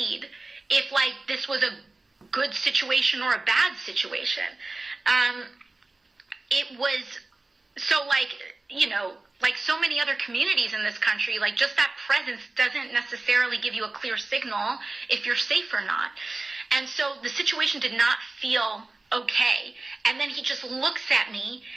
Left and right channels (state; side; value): quieter; left; 3.2 dB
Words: if like this was a good situation or a bad situation. It was so like, like so many other communities in this country, like just that presence doesn't necessarily give you a clear signal if you're safe or not. And so the situation did not feel okay. And then he just looks at me